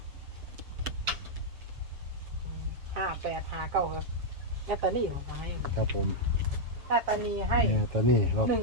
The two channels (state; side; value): late; left; 7.1 ms